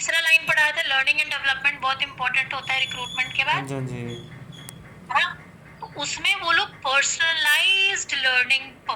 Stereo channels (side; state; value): both; identical; correlation 1.00